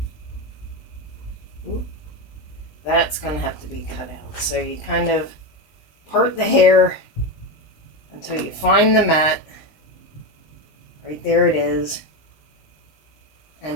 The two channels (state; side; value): late; right; 20 ms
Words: that's going to have to be cut out. So you kind of part the hair until you find the mat. Right there it is.